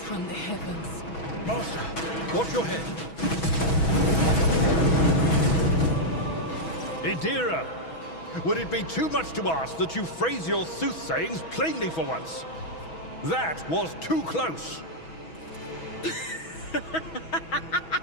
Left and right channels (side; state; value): right; late; 6.2 ms